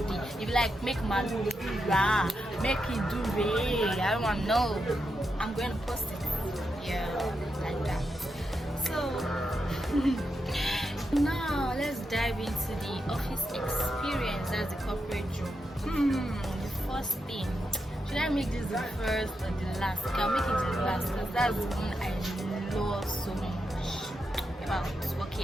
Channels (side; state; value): both; normal; correlation 0.85